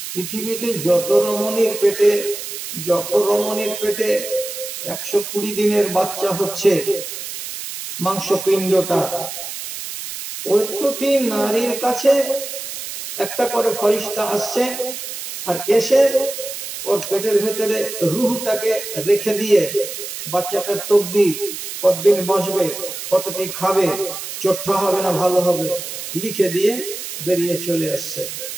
পৃথিবীতে যত রমণীর পেটে 120 দিনের বাচ্চা হচ্ছে, মাংসপিণ্ডটা, প্রত্যেকটি নারীর কাছে একটা করে ফেরেশতা আসছে, আর এসে ওর পেটের ভেতরে রূহটাকে রেখে দিয়ে বাচ্চাটার তকদির, কতদিন বাঁচবে, কতটি খাবে, চোট্টা হবে না ভালো হবে, লিখে দিয়ে বেরিয়ে চলে আসছে।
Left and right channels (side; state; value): right; noise; hiss, 8 dB below the sound